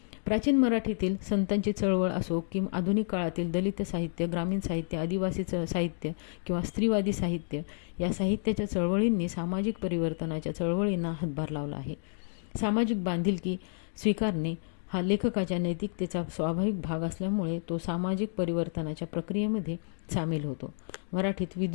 प्राचीन मराठीतील संतांची चळवळ असो की आधुनिक काळातील दलित साहित्य, ग्रामीण साहित्य, आदिवासी साहित्य किंवा स्त्रीवादी साहित्य या साहित्याच्या चळवळींनी सामाजिक परिवर्तनाच्या चळवळींना हातभार लावला आहे. सामाजिक बांधिलकी स्वीकारणे हा लेखकाच्या नैतिकतेचा स्वाभाविक भाग असल्यामुळे तो सामाजिक परिवर्तनाच्या प्रक्रियेमध्ये सामील होतो. मराठीत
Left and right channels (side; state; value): right; silent; digital silence